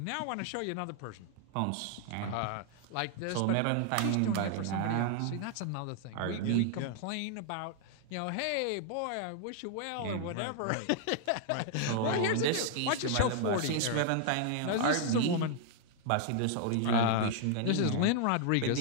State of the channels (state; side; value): different; both; correlation 0.00